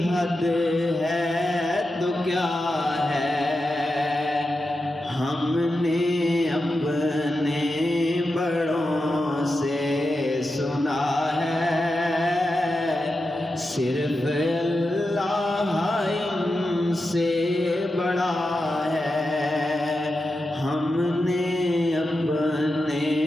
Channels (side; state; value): both; normal; correlation 0.90